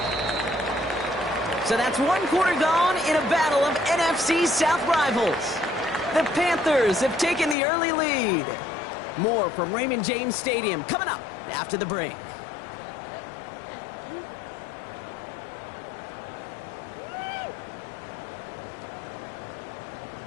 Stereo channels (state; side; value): drops out; right; at 7.6 s